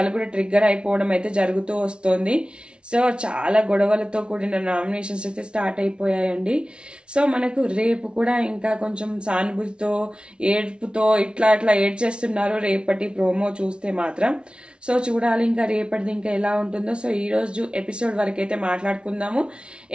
కూడా ట్రిగ్గర్ అయిపోవడం అయితే జరుగుతూ వస్తుంది. సో చాలా గొడవలతో కూడిన నామినేషన్స్ అయితే స్టార్ట్ అయిపోయాయండి. సో మనకు రేపు కూడా ఇంకా కొంచెం సానుభూతితో ఏడుపుతో ఇట్లా ఏడ్చేస్తున్నారు రేపటి ప్రోమో చూస్తే మాత్రం. సో చూడాలి ఇంకా రేపటిది ఇంకా ఎలా ఉంటుందో. సో ఈ రోజు ఎపిసోడ్ వరకు అయితే మాట్లాడుకుందాము.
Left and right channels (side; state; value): left; late; 0.057 ms